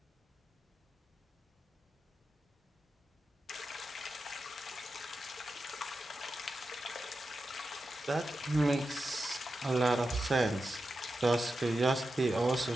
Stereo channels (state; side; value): normal; both; correlation 0.90